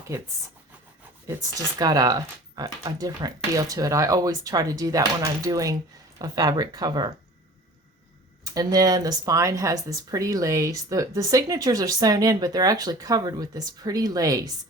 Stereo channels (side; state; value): both; normal; correlation 0.43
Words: It's just got a different feel to it. I always try to do that when I'm doing a fabric cover. And then the spine has this pretty lace. The signatures are sewn in, but they're actually covered with this pretty lace.